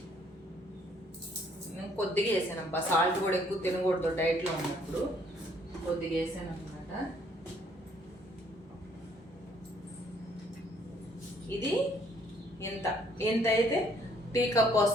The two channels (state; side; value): normal; both; correlation 0.64